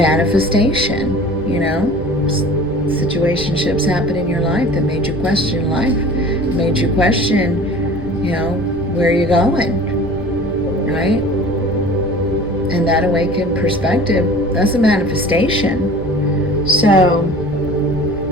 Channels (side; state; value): right; noise; rumble, 13 dB below the sound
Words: Situationships happen in your life that made you question life, made you question, where you're going, right? And that awakened perspective, that's a manifestation. So,